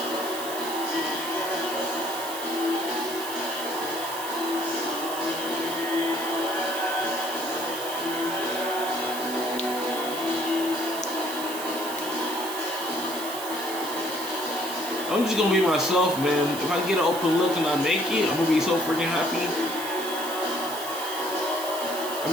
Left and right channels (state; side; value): noise; right; hiss, 9 dB below the sound